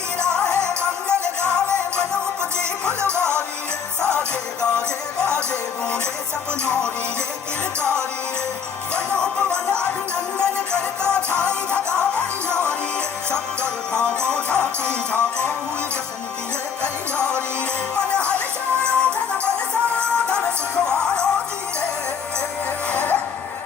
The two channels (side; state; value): right; quieter; 6.8 dB